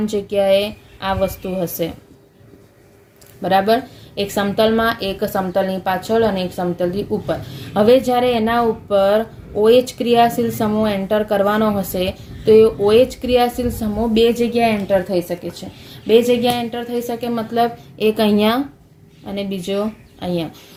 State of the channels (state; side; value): identical; both; correlation 1.00